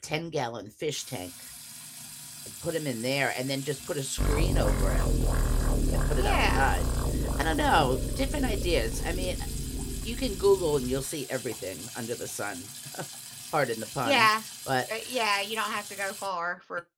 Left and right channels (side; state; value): both; identical; correlation 1.00